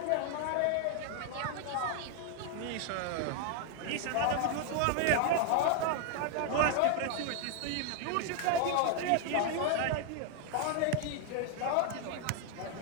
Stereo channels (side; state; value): both; different; correlation 0.00